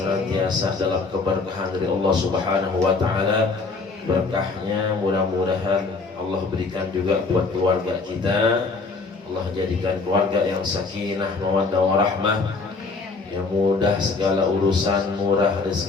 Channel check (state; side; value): quieter; right; 4.0 dB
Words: dalam keberkahan dari Allah Subhanahu wa taala. Berkahnya mudah-mudahan Allah berikan juga buat keluarga kita. Allah jadikan keluarga yang sakinah, mawaddah warahmah, yang mudah segala urusan, murah